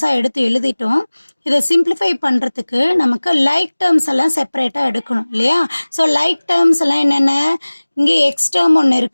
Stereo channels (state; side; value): inverted; both; correlation -1.00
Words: எடுத்து எழுதிட்டோம். இதை சிம்பிளிஃபை பண்ணுறதுக்கு நமக்கு லைக் டேர்ம்ஸ் எல்லாம் செப்பரேட்டாக எடுக்கணும் இல்லையா? ஸோ லைக் டேர்ம்ஸ் எல்லாம் என்னென்ன? இங்கே எக்ஸ் டேர்ம் ஒன்று